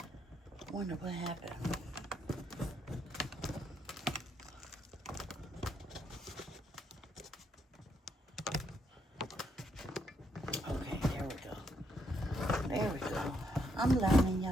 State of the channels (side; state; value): both; normal; correlation 0.75